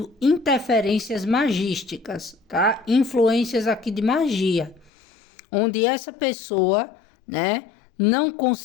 interferências magísticas, tá? Influências aqui de magia, onde essa pessoa, né, não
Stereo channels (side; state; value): right; drops out; at 4.9 s